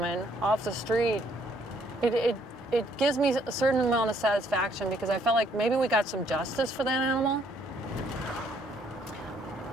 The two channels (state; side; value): normal; both; correlation 0.67